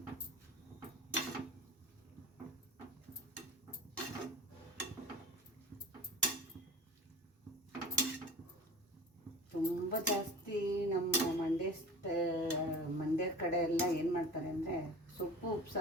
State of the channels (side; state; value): both; normal; correlation 0.37